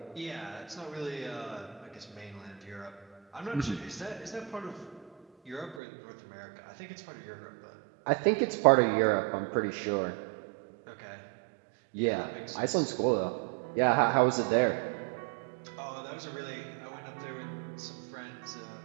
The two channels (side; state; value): left; drops out; at 5.8 s